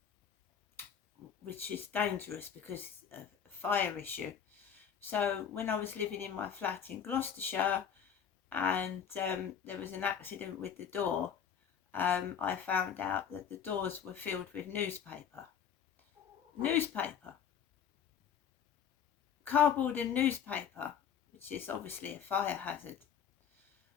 which is dangerous because of a fire issue. So when I was living in my flat in Gloucestershire and there was an accident with the door, I found out that the doors were filled with newspaper. Cardboard and newspaper, which is obviously a fire hazard.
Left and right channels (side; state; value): right; quieter; 8.0 dB